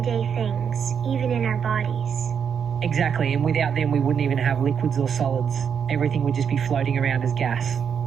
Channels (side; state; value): left; quieter; 7.3 dB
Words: things, even in our bodies. Exactly, and without them we wouldn't even have liquids or solids. Everything would just be floating around as gas.